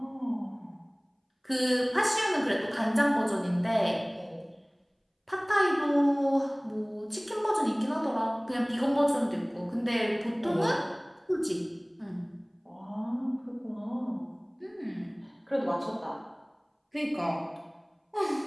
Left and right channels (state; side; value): identical; both; correlation 1.00